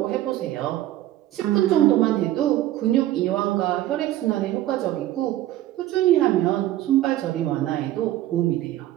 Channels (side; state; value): left; quieter; 14.2 dB